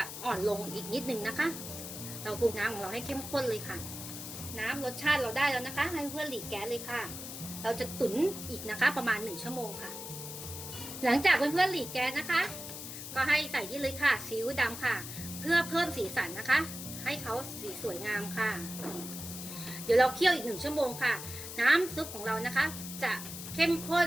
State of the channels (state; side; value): noise; left; hiss, 9 dB below the sound